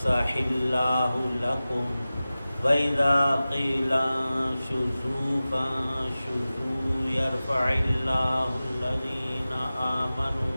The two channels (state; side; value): inverted; both; correlation -0.96